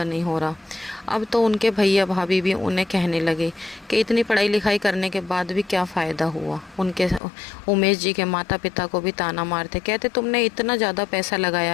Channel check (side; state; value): right; drops out; at 7.2 s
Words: नहीं हो रहा। अब तो उनके भैया भाभी भी उन्हें कहने लगे कि इतनी पढ़ाई लिखाई करने के बाद भी क्या फ़ायदा हुआ। उनके उमेश जी के माता पिता को भी ताना मारते, कहते तुमने इतना ज़्यादा पैसा